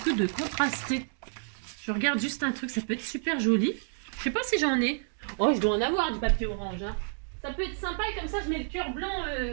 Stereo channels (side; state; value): left; silent; digital silence